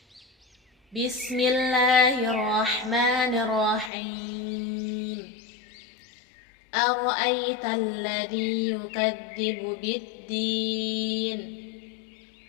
بسم الله الرحمن الرحيم. أرأيت الذي يكذب بالدين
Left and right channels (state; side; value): drops out; right; at 3.9 s